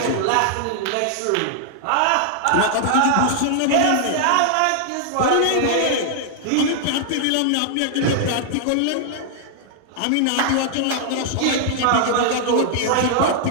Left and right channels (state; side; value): different; both; correlation -0.01